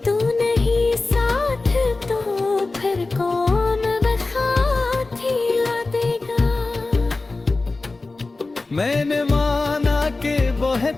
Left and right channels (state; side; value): quieter; right; 3.4 dB